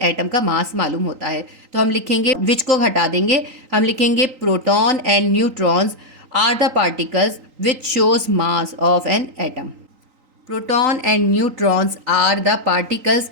का मास मालूम होता है। तो हम लिखेंगे, विच को हटा देंगे, हम लिखेंगे proton and neutrons are the particles which shows mass of an atom. Proton and neutrons are the particles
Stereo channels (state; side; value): late; left; 3.9 ms